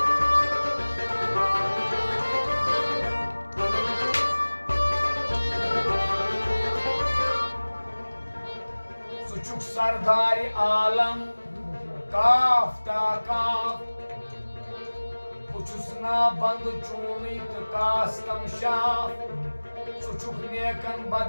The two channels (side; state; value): both; inverted; correlation -1.00